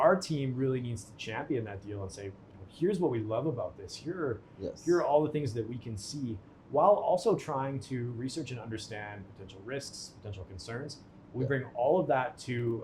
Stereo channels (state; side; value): identical; both; correlation 1.00